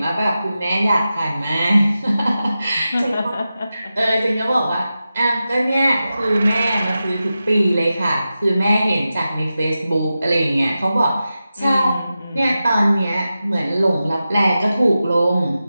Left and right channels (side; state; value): both; inverted; correlation -0.92